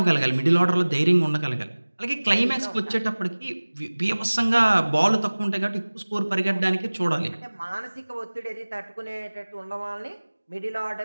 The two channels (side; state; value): both; inverted; correlation -1.00